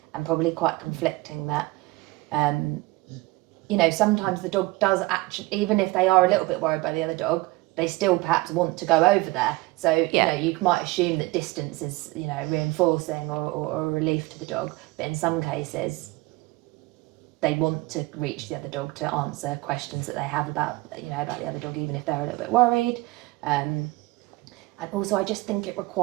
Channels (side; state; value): left; quieter; 21.2 dB